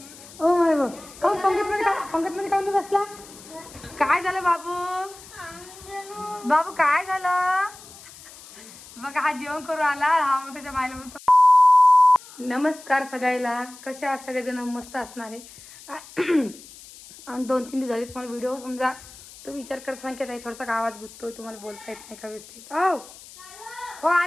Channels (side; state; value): left; noise; hiss, 19 dB below the sound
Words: Oh my God. काऊन पंगत मध्ये काऊन बसला? काय झालं बाबू? बाबू काय झालं? बघा हा जेवण करून आला. हा मग त्याच्या बायला म्हणतो नमस्कार सगळ्याला. कशा आहात सगळेजण? मस्त असणार आहे. आणि 2-3 दिवस झाले तुम्हाला व्हिडिओ समजा तो विचार करत सांगत आहे थोडासा आवाज गुंततोय, तुम्हाला बोलता येत नाही का व्यवस्थित? हो